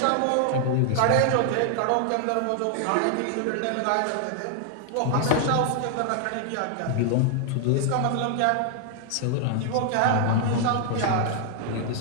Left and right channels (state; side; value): different; both; correlation 0.00